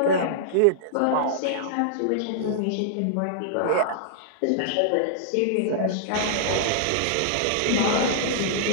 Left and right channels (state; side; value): different; both; correlation -0.01